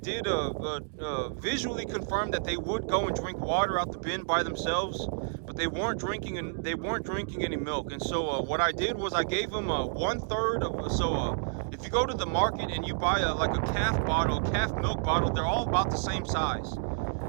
visually confirm that they would go and drink water out the bin by themselves, but they weren't drinking any milk. And so what I did was I gave them 1/3 of if you go to the market and you buy like a calf milk bottle, they're all about the same size.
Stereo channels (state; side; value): silent; left; digital silence